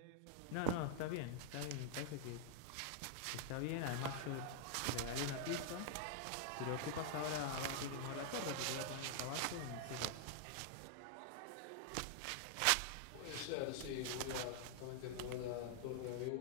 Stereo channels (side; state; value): both; different; correlation -0.01